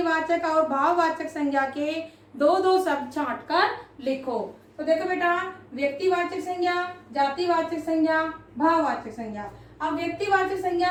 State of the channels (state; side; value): identical; both; correlation 1.00